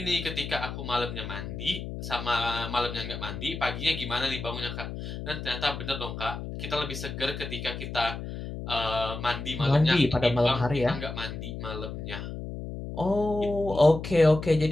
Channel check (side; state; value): left; noise; hum, 7 dB below the sound